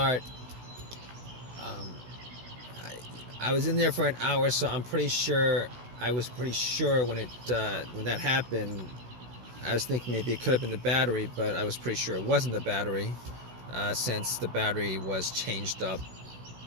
I was in there for an hour, so I was pretty sure when that happened. I was thinking maybe it could have been the battery, but I was pretty sure it wasn't the battery, since the battery was changed up.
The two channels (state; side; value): late; left; 16 ms